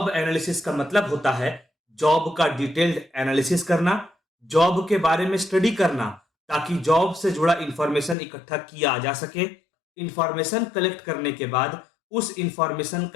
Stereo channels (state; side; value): drops out; right; at 8.2 s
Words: एनालिसिस का मतलब होता है जॉब का डिटेल्ड एनालिसिस करना, जॉब के बारे में स्टडी करना ताकि जॉब से जुड़ा इंफॉर्मेशन इकट्ठा किया जा सके। इंफॉर्मेशन कलेक्ट करने के बाद उस इंफॉर्मेशन